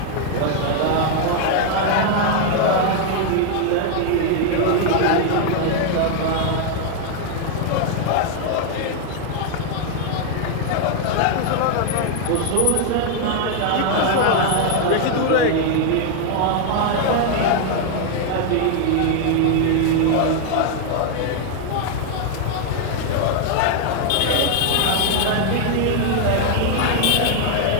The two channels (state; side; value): different; both; correlation 0.00